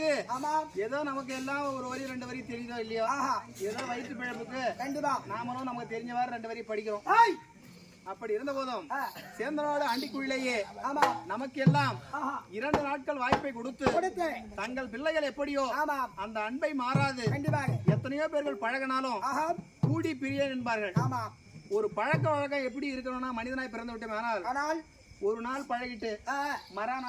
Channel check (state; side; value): identical; both; correlation 1.00